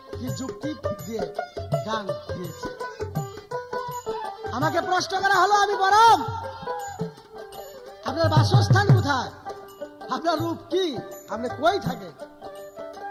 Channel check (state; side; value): identical; both; correlation 1.00